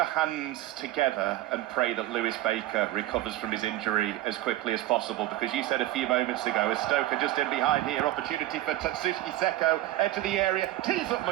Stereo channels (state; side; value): quieter; left; 15.2 dB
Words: hands together and pray that Lewis Baker recovers from his injury as quickly as possible, because you said a few moments ago, as Stoke are just in behind here, opportunity for Tatsuki Seko, enter the area, tees up